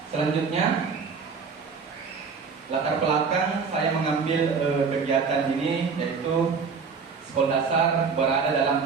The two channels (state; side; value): quieter; left; 5.4 dB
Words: Selanjutnya, latar belakang saya mengambil kegiatan ini yaitu sekolah dasar berada